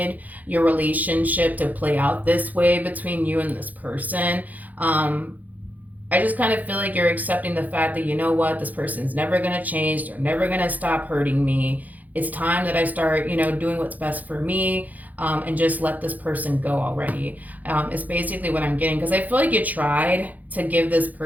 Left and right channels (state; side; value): late; left; 0.080 ms